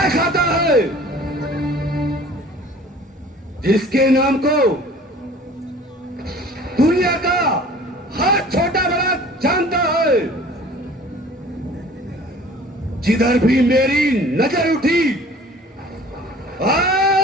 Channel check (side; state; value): both; normal; correlation 0.47